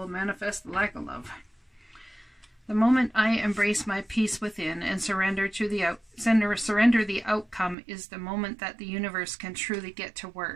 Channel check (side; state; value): left; drops out; at 7.8 s